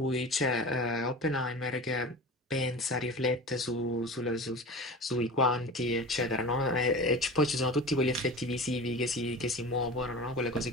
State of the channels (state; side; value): normal; both; correlation 0.33